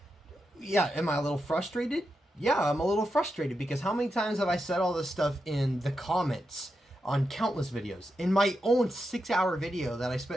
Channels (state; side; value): normal; both; correlation 0.87